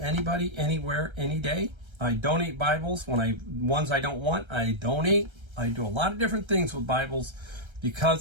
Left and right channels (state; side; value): late; left; 1.3 ms